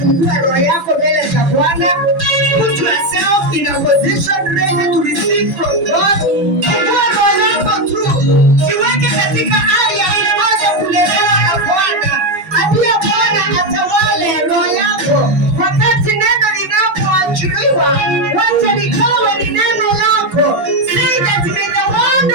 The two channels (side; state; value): left; late; 7.0 ms